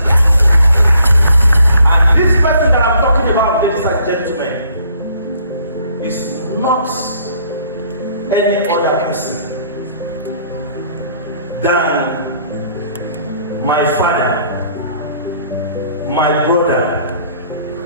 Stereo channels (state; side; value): inverted; both; correlation -0.63